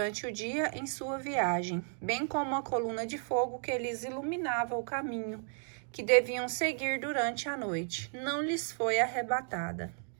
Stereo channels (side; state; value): left; silent; 55 dB below the other